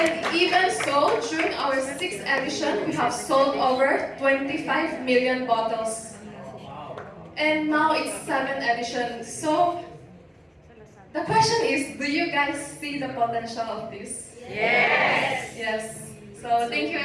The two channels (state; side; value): identical; both; correlation 1.00